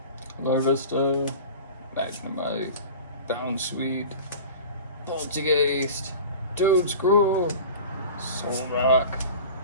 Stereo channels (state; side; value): inverted; both; correlation -0.37